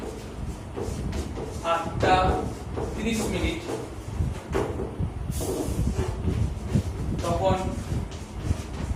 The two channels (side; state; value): both; identical; correlation 1.00